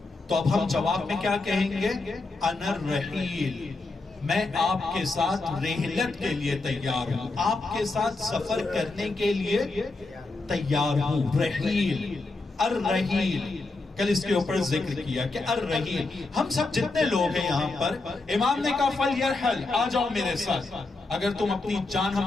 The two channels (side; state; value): right; quieter; 3.4 dB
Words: تو اب ہم جواب میں کیا کہیں گے؟ انا الرحیل، میں آپ کے ساتھ رحلت کے لیے تیار ہوں، آپ کے ساتھ سفر کرنے کے لیے تیار ہوں۔ رحیل الرحیل، کل اس کے اوپر ذکر کیا کہ الرحیل، ہم سب جتنے لوگ ہیں یہاں پر، امام نے کہا فَلْيَرْحَلْ، آ جاؤ میرے ساتھ، اگر تم اپنی جان ہم